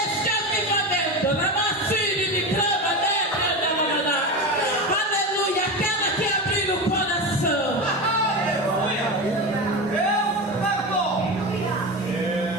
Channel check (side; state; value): both; normal; correlation 0.22